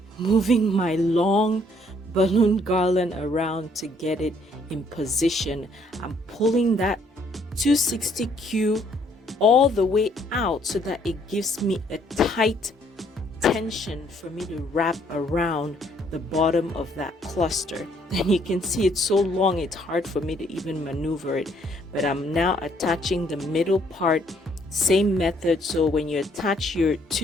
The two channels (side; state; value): both; normal; correlation 0.66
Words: moving my long balloon garland around to get it in position. I'm pulling that 260Q all the way out so that it gives me a tight tension for me to wrap around the bottom of that cluster. And you can see it's so long, it's hard for me to even maneuver it. But I'm now attaching the middle part, same method. So when you attach your